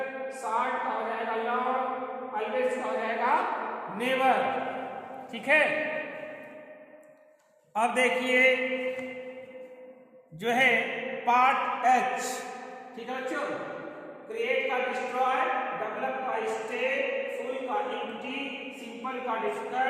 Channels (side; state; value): both; identical; correlation 1.00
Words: शॉर्ट का हो जाएगा लॉन्ग, ऑलवेज का हो जाएगा नेवर, ठीक है। अब देखिए जो है पार्ट एच, ठीक है बच्चों, क्रिएट का डिस्ट्रॉय, डेवलप का स्टे, फुल का एम्प्टी, सिंपल का